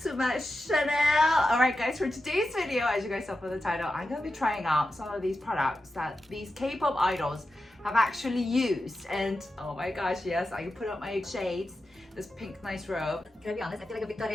to my channel. Alright guys, for today's video, as you guys saw from the title, I'm gonna be trying out some of these products that these K-pop idols have actually used. And oh my gosh, yes, I can put up my shades. This pink nice robe. Can I be honest? I feel like a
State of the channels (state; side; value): normal; both; correlation 0.91